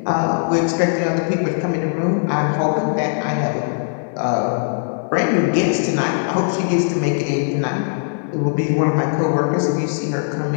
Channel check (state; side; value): silent; right; digital silence